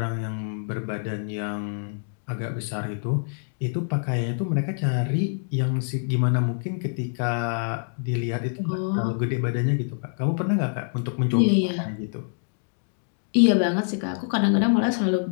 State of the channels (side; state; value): right; silent; digital silence